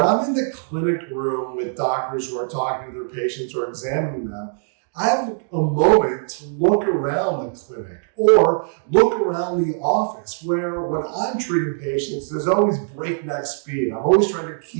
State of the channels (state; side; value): silent; left; digital silence